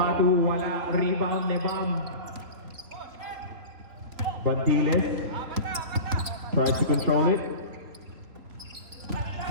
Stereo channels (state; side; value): late; left; 3.5 ms